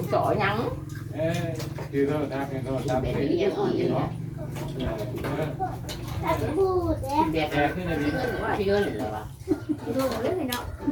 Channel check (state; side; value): identical; both; correlation 1.00